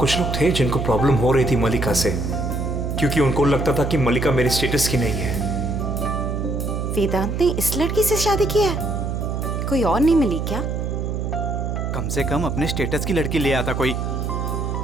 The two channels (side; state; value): right; noise; hum, 2 dB below the sound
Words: लोग थे जिनको प्रॉब्लम हो रही थी मल्लिका से, क्योंकि उनको लगता था कि मल्लिका मेरे स्टेटस की नहीं है। वेदांत ने इस लड़की से शादी की है? कोई और नहीं मिली क्या? कम से कम अपने स्टेटस की लड़की ले आता कोई।